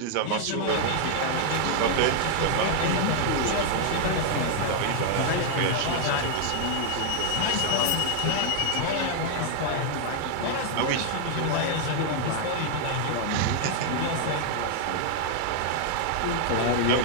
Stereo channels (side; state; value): both; different; correlation 0.00